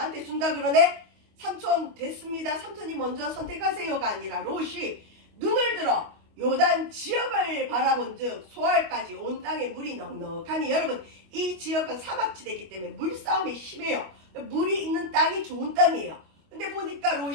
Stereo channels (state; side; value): late; left; 25 ms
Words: 준다 그러네. 삼촌 됐습니다. 삼촌이 먼저 선택하세요가 아니라 롯이 눈을 들어 요단 지역을 바라본 즉 소알까지 온 땅에 물이 넉넉하니 여러분 이 지역은 사막지대이기 때문에 물싸움이 심해요. 물이 있는 땅이 좋은 땅이에요. 근데 보니까